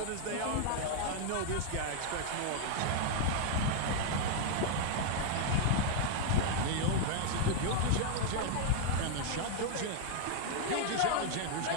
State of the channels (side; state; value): both; different; correlation 0.00